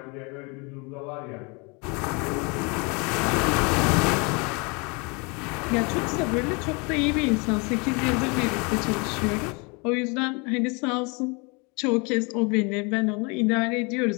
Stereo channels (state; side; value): quieter; right; 30.6 dB